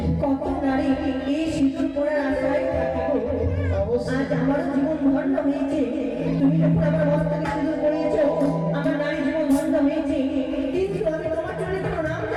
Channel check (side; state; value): both; identical; correlation 1.00